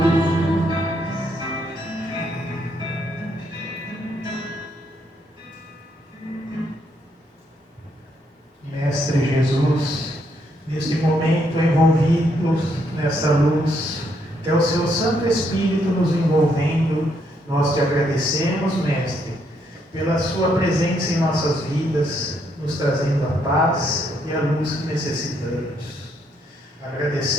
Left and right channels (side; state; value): both; normal; correlation 0.74